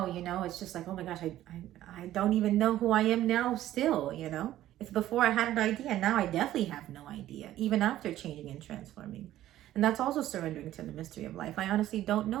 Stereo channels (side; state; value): left; quieter; 13.5 dB